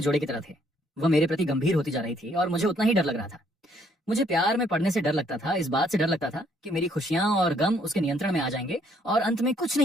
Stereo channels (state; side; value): normal; both; correlation 0.67